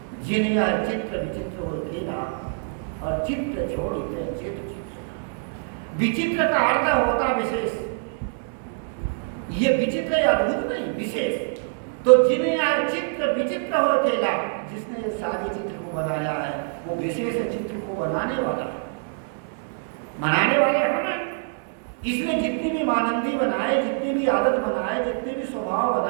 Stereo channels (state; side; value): silent; left; digital silence